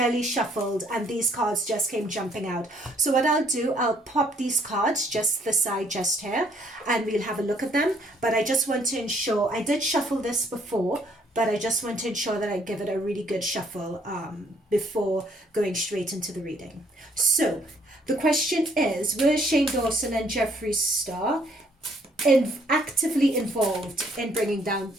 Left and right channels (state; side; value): normal; both; correlation 0.65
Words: shuffled and these cards just came jumping out. So what I'll do, I'll pop these cards just to the side just here and we'll have a look at them. But I just want to ensure, I did shuffle this before, but I just want to ensure that I give it a really good shuffle before going straight into the reading. So the question is, were ShaneDawson and Jeffree Star actively involved in bringing down